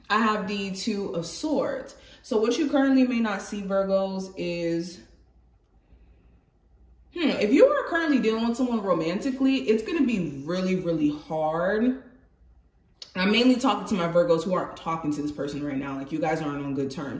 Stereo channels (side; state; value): both; identical; correlation 1.00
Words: I have the 2 of Swords. So what you currently may not see, Virgos, is, if you are currently dealing with someone romantically, it's going to be really, really hard. I'm mainly talking to my Virgos who aren't talking to this person right now. Like, you guys aren't on good